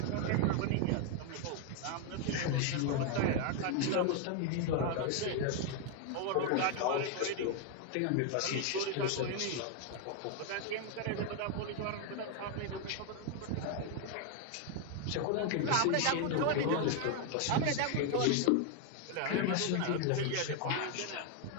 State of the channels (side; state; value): both; different; correlation 0.00